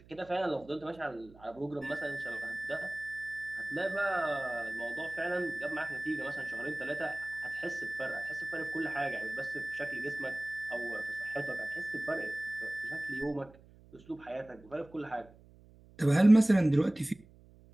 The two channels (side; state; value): right; noise; hum, 24 dB below the sound